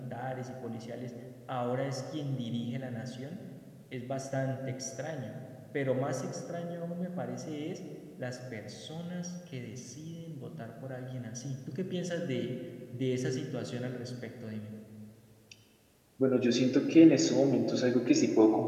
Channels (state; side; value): identical; both; correlation 1.00